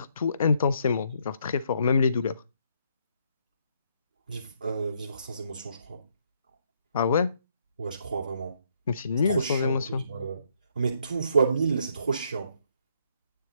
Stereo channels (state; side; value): inverted; both; correlation -0.71